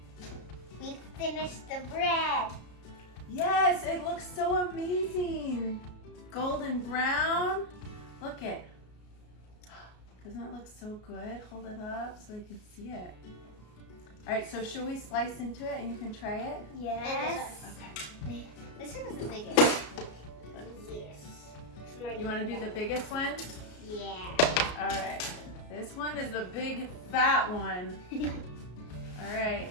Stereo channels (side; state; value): right; late; 33 ms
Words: We finished the bread. Yes, it looks so amazing. Golden brown. Look it. Doesn't it look so good? Hold it up so they can see it. All right, so should we slice into it and you can try it? Yes. Okay. This one is the biggest. You want to do the biggest one? Yeah. All right. This one is the big fat one. All right.